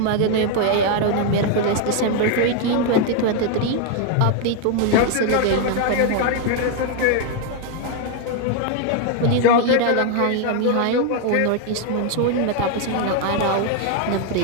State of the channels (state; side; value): different; both; correlation 0.01